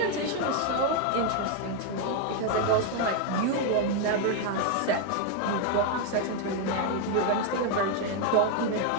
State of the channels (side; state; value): both; different; correlation 0.01